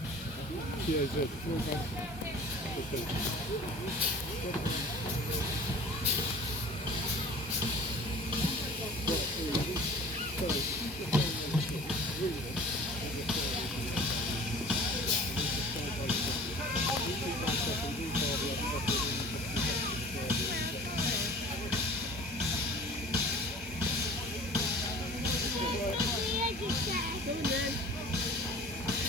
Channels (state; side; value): normal; both; correlation 0.44